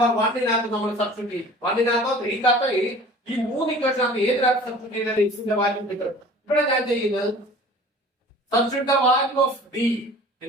1 നകത്ത് നമ്മൾ സബ്സ്റ്റിറ്റ്യൂട്ട് ചെയ്യും. 1 നകത്തോ 3 നകത്തോ ഈ മൂന്ന് ഇക്വേഷനകത്ത് ഏതിനകത്ത് സബ്സ്റ്റിറ്റ്യൂട്ട് ചെയ്താൽ x ന്റെ വാല്യൂ കിട്ടും. ഇവിടെ ഞാൻ ചെയ്യുന്നത് substitute the value of d.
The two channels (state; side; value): normal; both; correlation 0.45